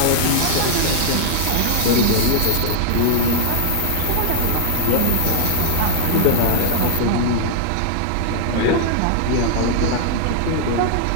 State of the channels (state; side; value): different; both; correlation -0.01